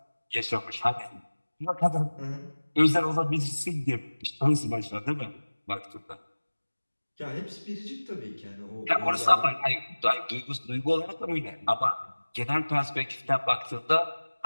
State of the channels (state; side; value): inverted; both; correlation -1.00